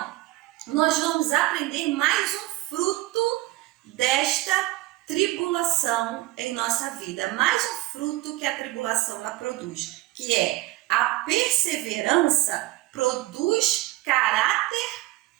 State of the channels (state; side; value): quieter; left; 18.4 dB